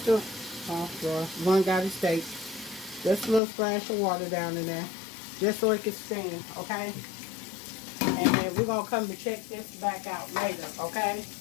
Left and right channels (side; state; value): right; drops out; at 3.4 s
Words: a, one got to steak. Just a little splash of water down in there, just so it can steam, okay? And then we're going to come and check this back out later, okay?